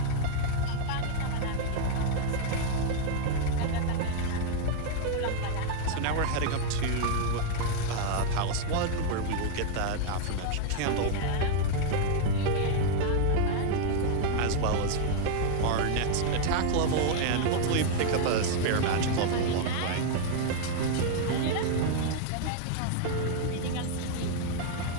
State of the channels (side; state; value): both; different; correlation -0.01